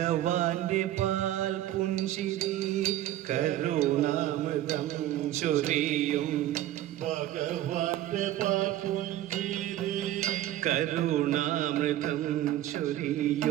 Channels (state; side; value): quieter; left; 13.5 dB